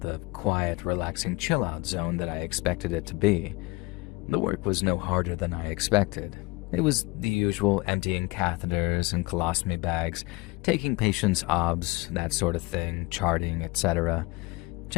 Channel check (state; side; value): quieter; right; 23.6 dB